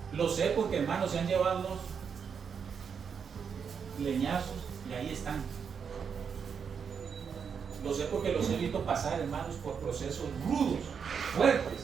Lo sé porque, hermanos, se han llevado unos leñazos Y ahí están. Lo sé porque los he visto pasar, hermanos, por procesos rudos,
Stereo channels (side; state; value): left; quieter; 6.6 dB